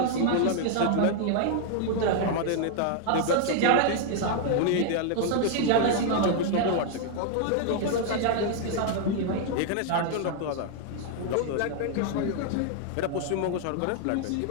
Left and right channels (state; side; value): different; both; correlation 0.00